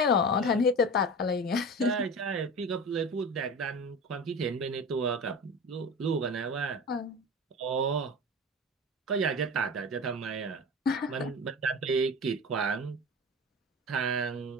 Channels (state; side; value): normal; both; correlation 0.31